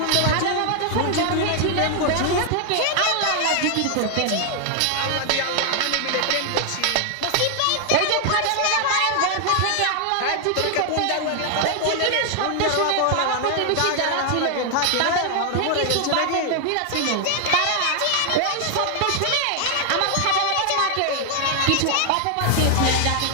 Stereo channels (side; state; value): both; different; correlation 0.00